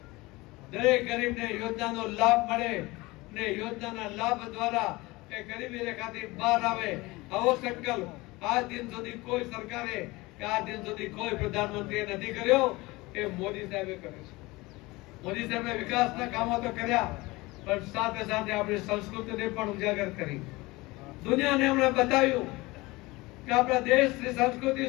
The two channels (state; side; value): quieter; right; 21.9 dB